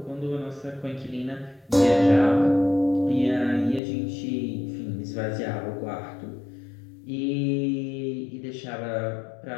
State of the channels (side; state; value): right; drops out; at 3.8 s